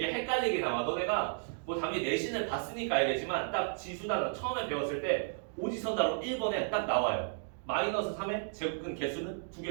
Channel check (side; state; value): left; silent; digital silence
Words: 헷갈리게 나와. 너네가 뭐 당연히 내신을 봤으니까 알겠지만 딱 지수단어 처음에 배웠을 때 오지선다로 1번에 딱 나와요. 마이너스 3의 제곱근 개수는